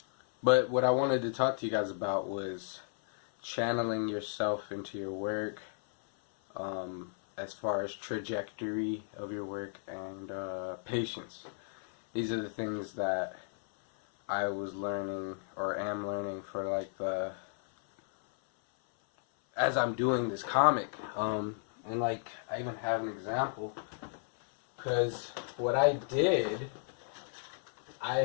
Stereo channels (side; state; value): right; silent; 55 dB below the other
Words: But what I wanted to talk to you guys about was channeling yourself into your work, as far as trajectory of your work and patience. These are the things that I was learning or am learning for like as I'm doing this comic, and like I even have an example, because what I did, I